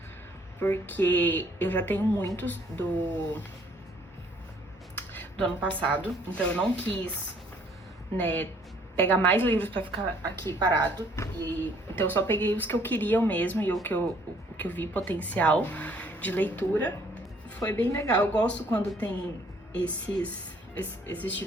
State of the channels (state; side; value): normal; both; correlation 0.61